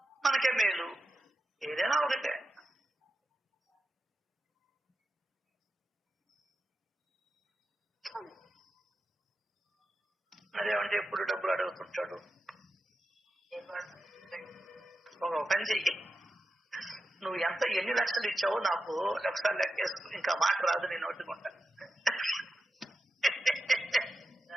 మనకే మేలు. ఏదైనా ఒకటే. అదేమంటే ఎప్పుడు డబ్బులు అడుగుతుంటాడు. ఒక పని చెయ్యి, నువ్వు ఎన్ని లక్షలు ఇచ్చావో నాకు ఒకసారి లెక్కేసుకు, ఇంకా మాట రాదు నేను ఒట్టుకుంటా.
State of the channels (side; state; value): both; normal; correlation 0.90